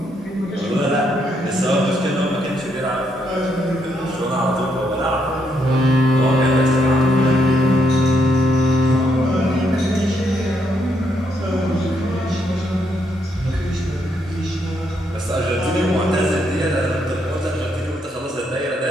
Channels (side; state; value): both; normal; correlation 0.75